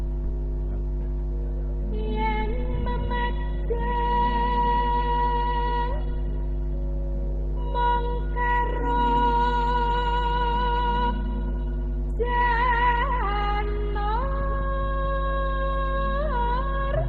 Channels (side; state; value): both; identical; correlation 1.00